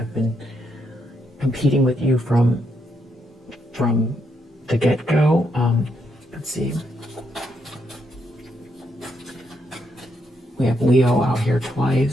been competing with you from the get-go. Let's see. We have Leo out here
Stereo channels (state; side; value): normal; both; correlation 0.78